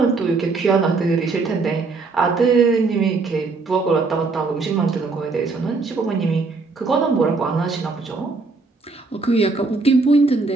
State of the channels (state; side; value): quieter; left; 4.0 dB